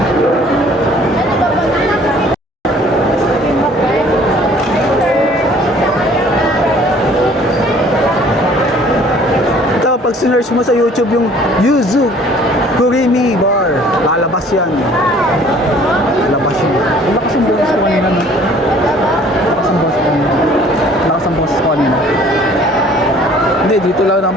Ito, pag sinearch mo sa YouTube yung Yuzu Kurimi Bar, lalabas yan. Lalabas yun. Lakas ang boses ko kanina. Lakas ang boses ko kanina. Lakas ang boses ko kanina. Hindi, dito lang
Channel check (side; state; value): both; normal; correlation 0.54